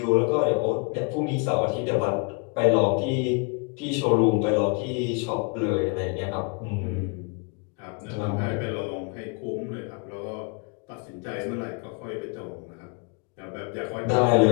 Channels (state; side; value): quieter; right; 33.4 dB